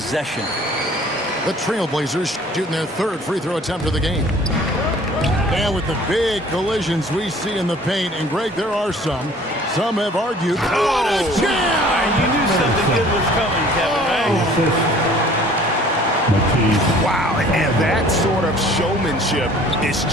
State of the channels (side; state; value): both; normal; correlation 0.51